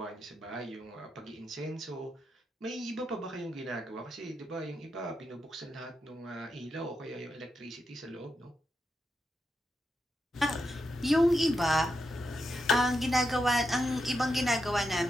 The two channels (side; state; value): both; normal; correlation 0.86